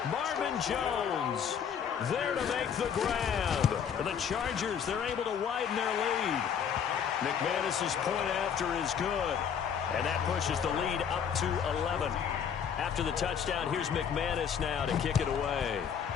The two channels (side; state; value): right; quieter; 7.7 dB